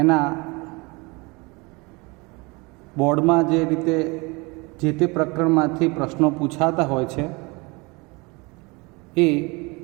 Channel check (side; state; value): left; quieter; 26.7 dB